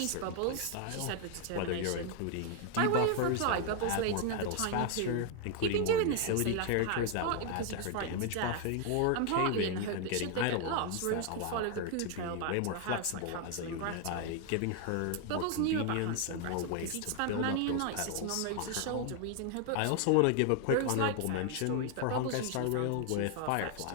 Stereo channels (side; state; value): both; different; correlation 0.00